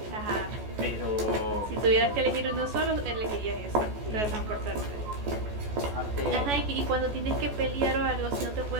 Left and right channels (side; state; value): left; late; 14 ms